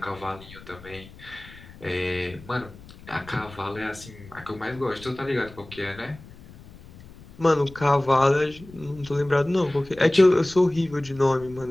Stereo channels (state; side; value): noise; left; rumble, 19 dB below the sound